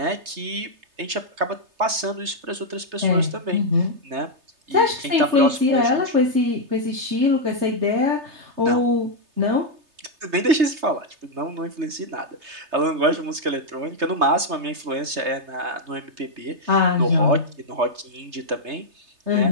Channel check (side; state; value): left; late; 3.3 ms